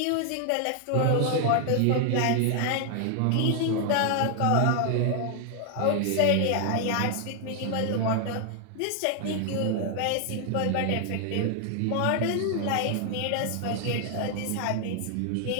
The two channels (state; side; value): different; both; correlation 0.00